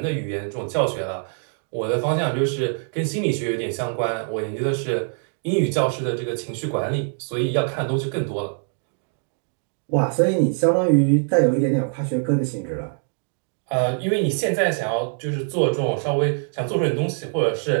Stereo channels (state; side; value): silent; left; 63 dB below the other